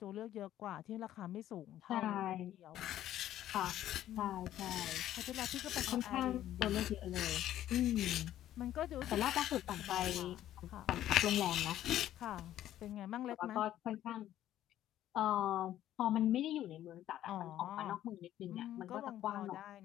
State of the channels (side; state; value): right; quieter; 12.5 dB